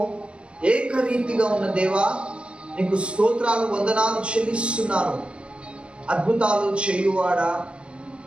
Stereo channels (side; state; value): left; late; 0.057 ms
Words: ఏకరీతిగా ఉన్న దేవా, నీకు స్తోత్రాలు వందనాలు చెల్లిస్తున్నాను. అద్భుతాలు చేయువాడా,